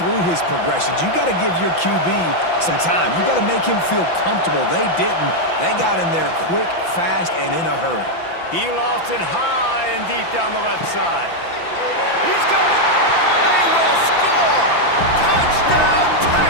through his progressions. You got to give your QB some time. You got to make him feel comfortable. They didn't. They got in there quick, fast, and in a hurry. He lofts it high and deep down the left side. He's got it. They will score. Touchdown,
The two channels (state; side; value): late; right; 5.9 ms